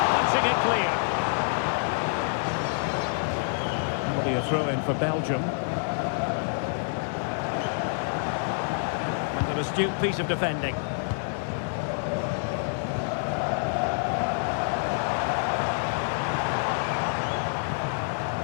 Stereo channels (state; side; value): silent; right; digital silence